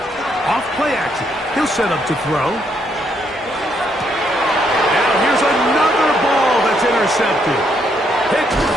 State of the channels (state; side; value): normal; both; correlation 0.74